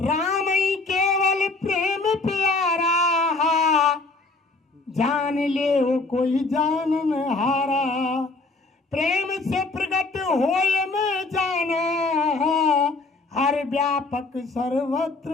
ही केवल प्रेम प्यारा, जान ले वो कोई जानन हारा, प्रेम से प्रकट होए में जाना, हर व्यापक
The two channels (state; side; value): quieter; right; 3.5 dB